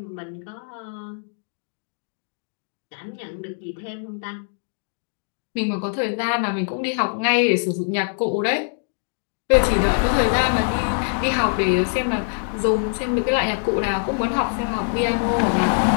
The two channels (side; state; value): right; silent; digital silence